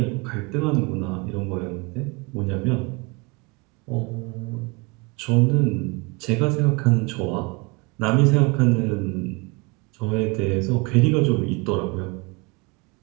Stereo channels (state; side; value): quieter; left; 27.9 dB